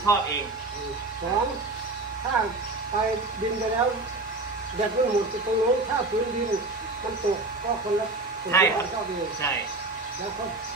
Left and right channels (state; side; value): quieter; left; 3.1 dB